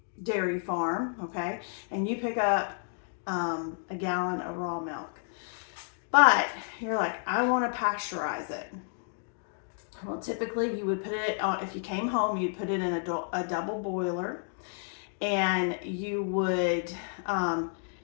dairy farm, okay, and you pick up a gallon of raw milk. But you're like, I want to pasteurize it. Well, typically you would put it on, if you came home, you'd put it in a double boiler, and you would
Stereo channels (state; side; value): silent; right; digital silence